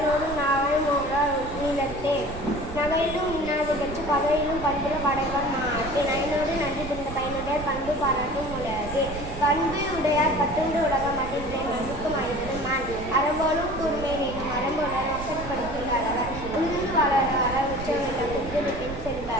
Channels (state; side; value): noise; right; rumble, 11 dB below the sound